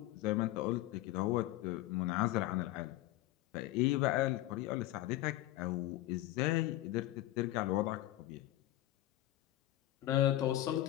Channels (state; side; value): quieter; right; 15.6 dB